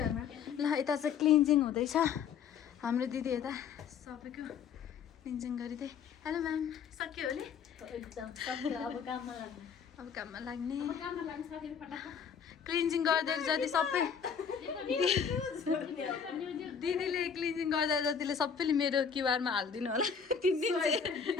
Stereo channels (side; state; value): right; quieter; 6.9 dB